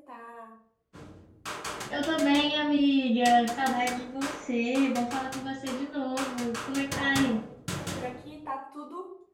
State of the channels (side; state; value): both; identical; correlation 1.00